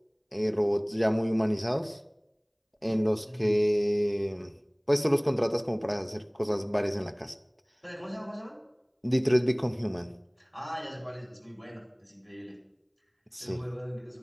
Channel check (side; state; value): both; identical; correlation 1.00